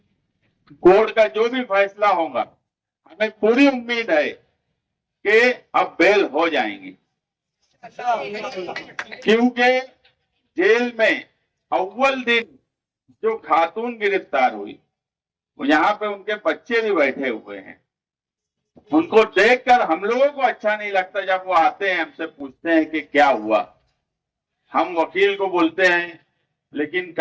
कोर्ट का जो भी फैसला होगा, हमें पूरी उम्मीद है कि अब बेल हो जाएंगी, क्योंकि जेल में अव्वल दिन जो खातून गिरफ्तार हुई, यहाँ पे उनके बच्चे भी बैठे हुए हैं। उनको देखकर हम लोगों को अच्छा नहीं लगता। जब वो आते हैं, हमसे पूछते हैं कि क्या हुआ, हम वकील को बोलते हैं, लेकिन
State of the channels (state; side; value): identical; both; correlation 1.00